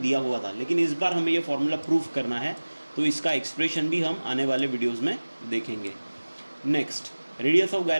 हुआ था, लेकिन इस बार हमें ये फार्मूला प्रूफ करना है, तो इसका एक्सप्रेशन भी हम आने वाले वीडियोस में देखेंगे। Next, radius of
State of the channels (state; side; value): inverted; both; correlation -1.00